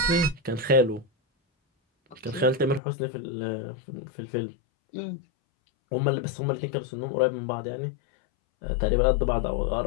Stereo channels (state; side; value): drops out; right; at 2.8 s